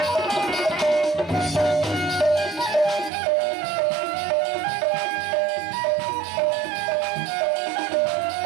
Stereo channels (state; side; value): drops out; left; at 3.1 s